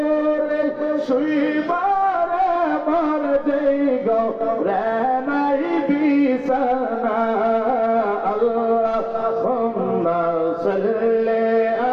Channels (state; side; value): identical; both; correlation 1.00